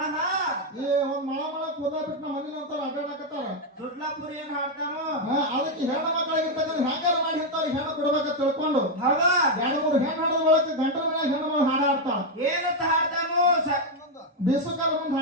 ಈ ಒಂದ್ ಮಳ ಕೂದ ಬಿಟ್ಟು ನಮ್ಮ ಮನೆ ಅಂತಾರ ಅಡ್ಡಾಡಕತ್ತಾರ. ದುಡ್ಲಾಪುರಿ ಏನ್ ಹಾಡ್ತಾನೋ ಅದಕ್ಕೆ ಹೆಣ್ಣು ಮಕ್ಕಳಾಗಿರ್ತಕ್ಕಂಥ ಹೆಂಗಾರ ಮಾಡಿ ಇಂಥವ್ರಿಗೆ ಹೆಣ್ಣು ಕೊಡ್ಬೇಕಂತ ತಿಳ್ಕೊಂಡು ಹೌದಾ? 2-3 ಹೆಣ್ಣು ಹಾಡೋದ್ ಒಳಗೆ ಗಂಟರ ಮನ್ಯಾಗ ಹೆಣ್ಣು ಮಗಳು ಹಾಡ ಆಡ್ತಾಳ. ಏನಂತ ಹಾಡ್ತಾನೋ ಬೇಸುಕಾಲ ಮುಂದೆ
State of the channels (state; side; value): normal; both; correlation 0.02